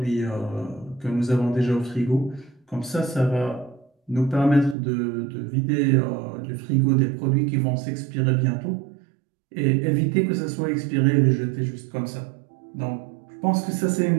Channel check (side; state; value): left; drops out; at 4.8 s